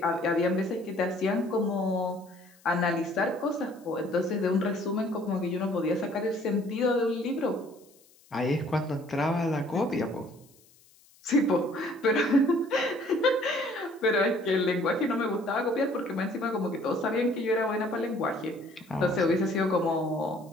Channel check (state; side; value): noise; left; hiss, 29 dB below the sound